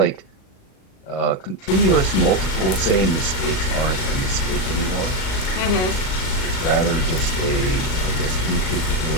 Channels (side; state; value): right; late; 37 ms